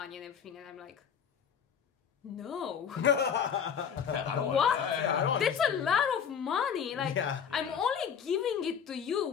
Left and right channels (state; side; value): quieter; right; 7.5 dB